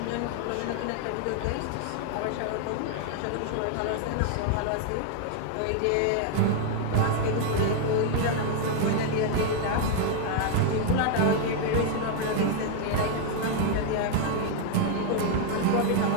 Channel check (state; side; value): different; both; correlation 0.00